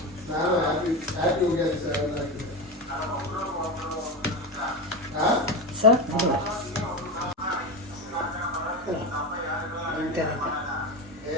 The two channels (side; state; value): both; normal; correlation 0.19